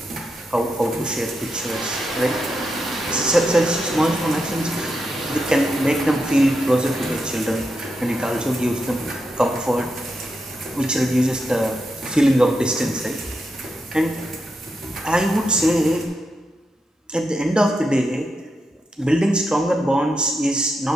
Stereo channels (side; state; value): both; normal; correlation 0.85